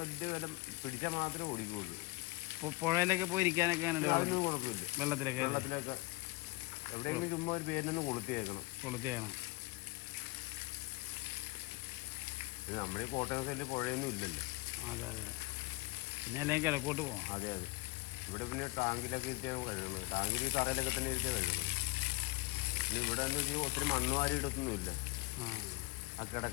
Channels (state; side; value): quieter; right; 23.4 dB